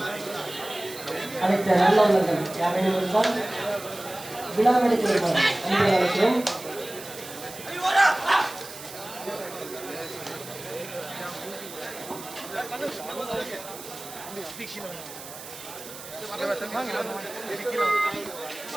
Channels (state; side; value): noise; right; hiss, 14 dB below the sound